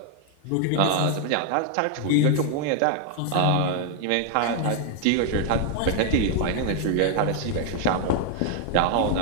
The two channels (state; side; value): different; both; correlation 0.00